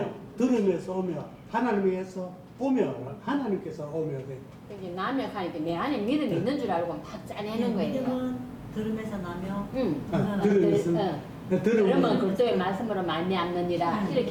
들으면서 오며 하나님에게서 오며 하나님께서 오며 돼. 이제 남역하니까 내 안에 믿음이 있는 줄 알고 막 짜내는 거예요. 믿음은 들음에서 나며 응. 들으면서 그러면 들으면 그리스도의 말씀으로 많이 암느니라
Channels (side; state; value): both; identical; correlation 1.00